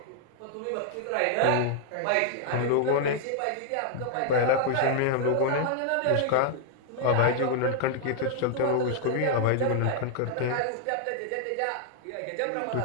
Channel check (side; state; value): both; different; correlation -0.01